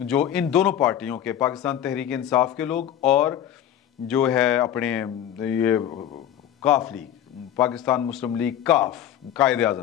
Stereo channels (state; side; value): quieter; right; 10.7 dB